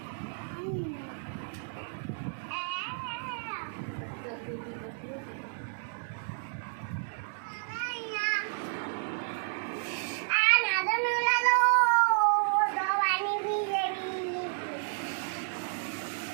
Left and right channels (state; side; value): silent; left; 57 dB below the other